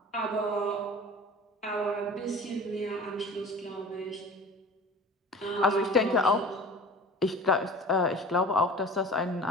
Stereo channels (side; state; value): both; normal; correlation 0.40